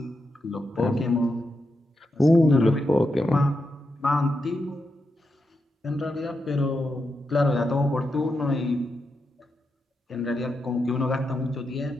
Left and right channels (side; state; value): both; normal; correlation 0.86